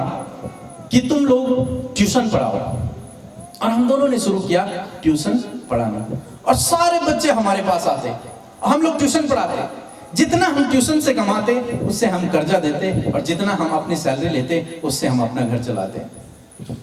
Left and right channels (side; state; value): both; identical; correlation 1.00